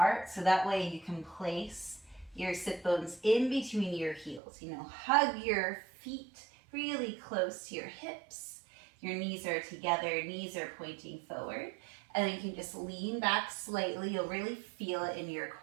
so that way you can place your sit bones in between your heels. Hug your feet really close to your hips. Your knees are together, knees are pointing forward. And then you can just lean back slightly. You'll really feel it in your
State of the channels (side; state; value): left; drops out; at 4.4 s